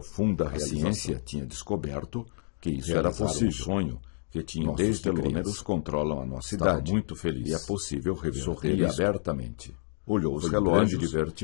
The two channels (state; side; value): silent; right; 55 dB below the other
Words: A realização. ciência tinha descoberto que isso Realizar era possível. um sonho que tinham Nossos desde telômeros criança. controlam a nossa Estava idade. muito feliz. E é possível reverter Sorria isso. abertamente. Olhou os Foi relógios grande